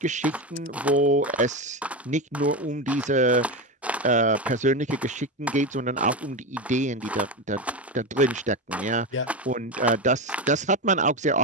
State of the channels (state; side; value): normal; both; correlation 0.16